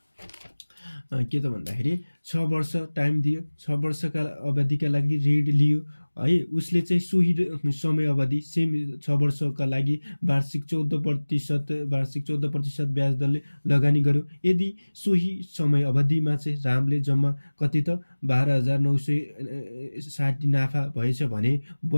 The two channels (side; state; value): both; inverted; correlation -1.00